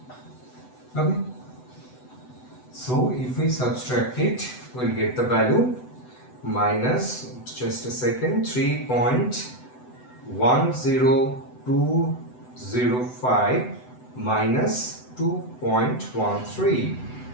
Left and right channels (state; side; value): late; right; 8.0 ms